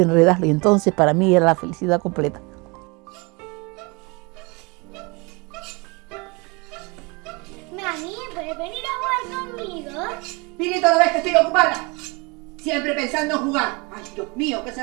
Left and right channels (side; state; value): left; quieter; 28.1 dB